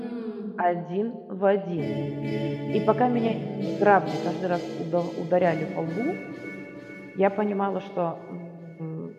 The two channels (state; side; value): identical; both; correlation 1.00